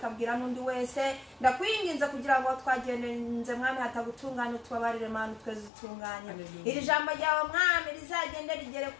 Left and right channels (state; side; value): drops out; right; at 5.7 s